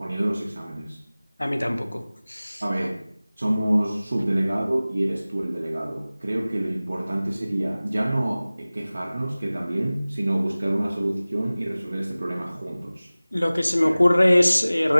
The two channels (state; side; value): inverted; both; correlation -0.98